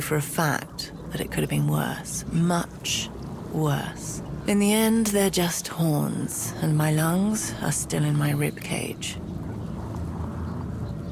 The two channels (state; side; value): identical; both; correlation 1.00